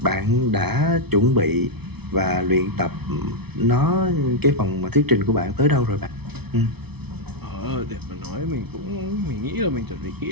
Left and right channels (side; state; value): left; late; 0.98 ms